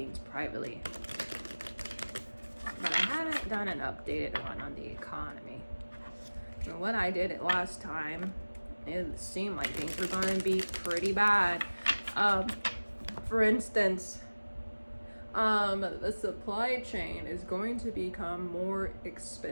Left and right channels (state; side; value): inverted; both; correlation -1.00